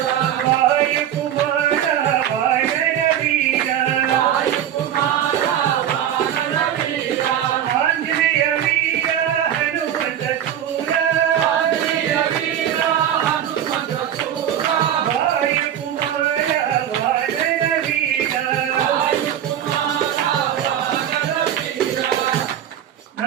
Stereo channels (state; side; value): quieter; left; 10.3 dB